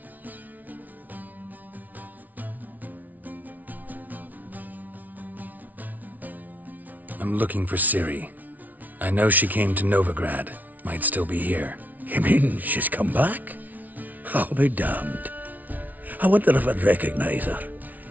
I'm looking for Ciri. I know she came to Novigrad. Might still be here. You mean she's come back? I'll be damned. I wonder if I'd recognize her.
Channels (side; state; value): left; late; 0.077 ms